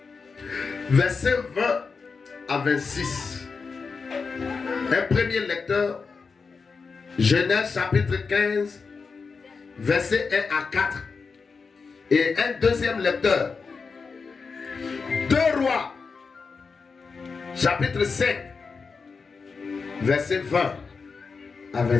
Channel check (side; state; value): right; quieter; 4.9 dB